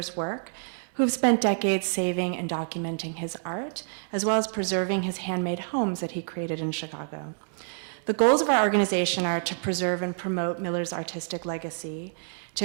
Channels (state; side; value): silent; left; digital silence